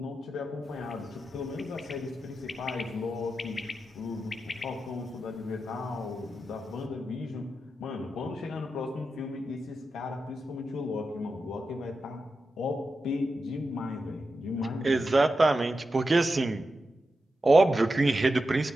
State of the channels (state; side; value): normal; both; correlation 0.89